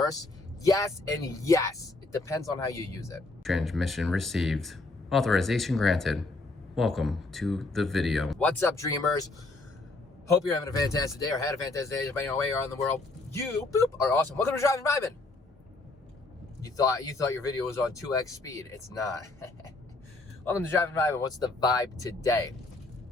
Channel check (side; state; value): right; quieter; 3.2 dB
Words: Yes and yes. It depends on how you use it. Transmission received. Authorization granted. Welcome to the video. What's up, dreamers? Hope you're having a fantastic day or had a fantastic day, depending on where you are in the world. You, boop, are awesome. Welcome to Driving Vibin'. You thought your video was on 2x speed. It's not. Welcome to Driving Vibin'. What's the vibe today?